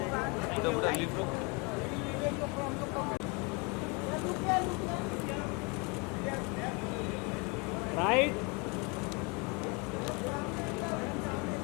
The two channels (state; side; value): quieter; right; 30.5 dB